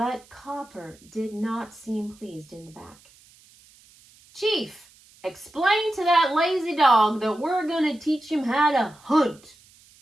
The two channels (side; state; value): right; noise; hiss, 27 dB below the sound